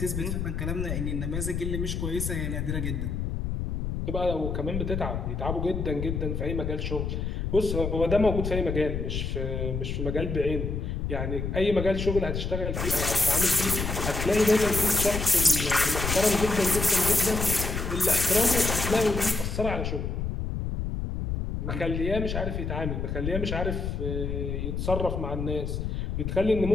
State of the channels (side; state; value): left; noise; rumble, 2 dB below the sound